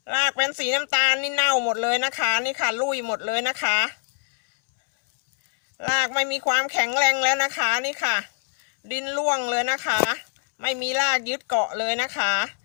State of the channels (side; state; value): right; silent; 63 dB below the other